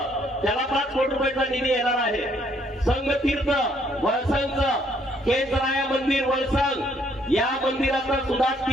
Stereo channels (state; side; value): normal; both; correlation 0.67